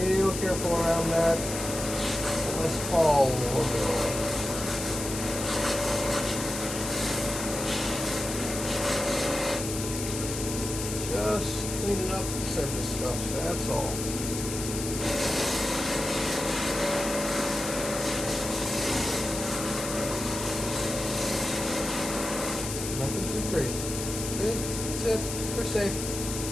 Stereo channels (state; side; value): noise; left; hiss, 6 dB below the sound